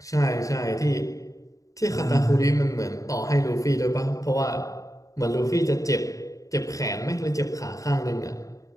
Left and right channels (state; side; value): late; right; 0.16 ms